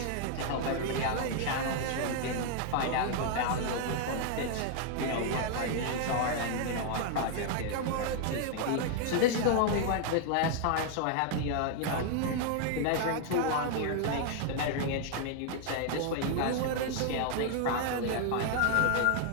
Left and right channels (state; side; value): different; both; correlation 0.00